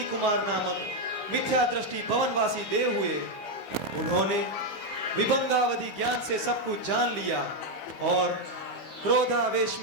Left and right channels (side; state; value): right; late; 15 ms